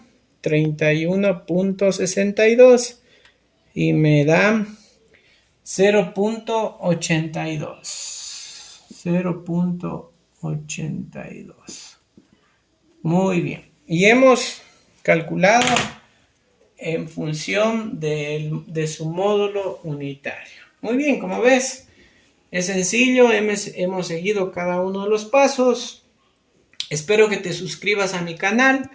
31,62 y me da 0,82. 0,82. Muy bien. Y hemos calculado en función de su módulo unitario. Muy bien, como ves, es sencillo, hemos seguido cada uno de los pasos. Espero que te suscribas a mi canal.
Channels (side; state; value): both; identical; correlation 1.00